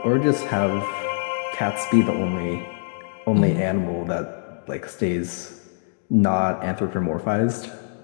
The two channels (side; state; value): right; silent; digital silence